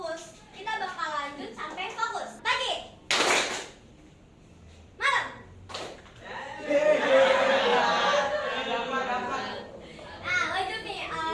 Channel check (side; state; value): both; identical; correlation 1.00